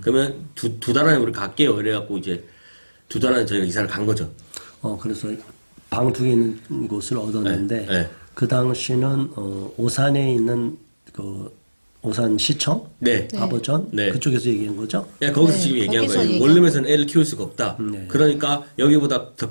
그러면 두 달 안에 우리 갈게요. 이래갖고 이제 2달 안에 저희가 이사를 간 거죠. 그래서 방 2개 있는 곳을 얻었는데 네, 네. 그 당시는 오산에 있는 오산 시청, 네. 아버전 네. 그쪽에서 얘기한 거죠? 야, 거기서 네, 지금 얘기한 거기서 거예요. 얘기한 원룸에서는 애를 키울 수가 없다. 네. 그러니까 여기보다 더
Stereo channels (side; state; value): both; inverted; correlation -1.00